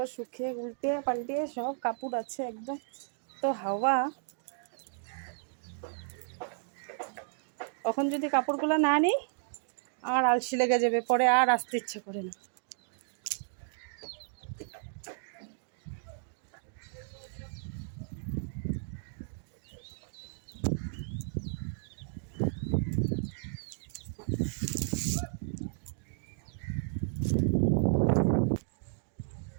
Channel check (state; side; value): silent; left; digital silence